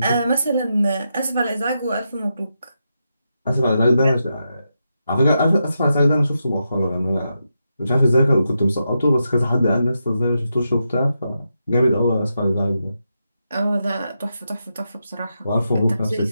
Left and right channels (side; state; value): both; inverted; correlation -0.85